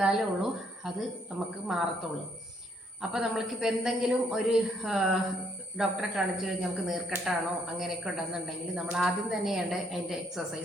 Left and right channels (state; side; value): normal; both; correlation 0.69